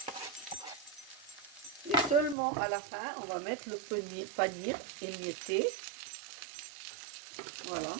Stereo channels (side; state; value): left; drops out; at 2.4 s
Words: Et seulement à la fin, on va mettre le panir émietté. Voilà.